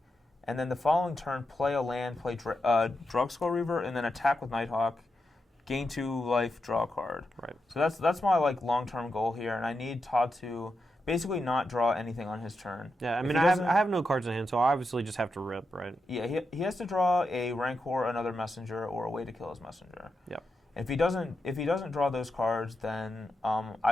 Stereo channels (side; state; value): both; normal; correlation 0.87